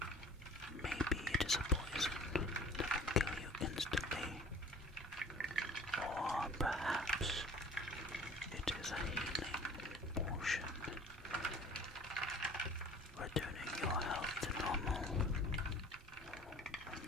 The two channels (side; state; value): both; normal; correlation 0.47